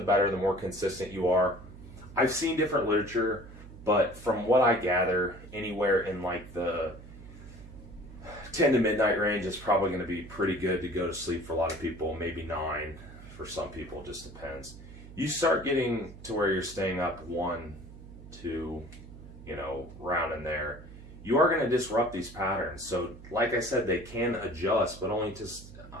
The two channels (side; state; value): right; noise; hum, 16 dB below the sound